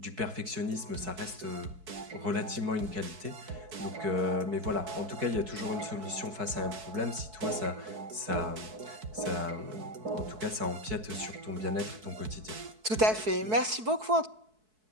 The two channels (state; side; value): late; left; 4.6 ms